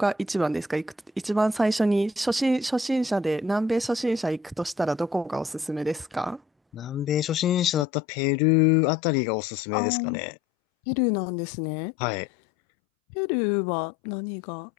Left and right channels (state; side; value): drops out; right; at 7.9 s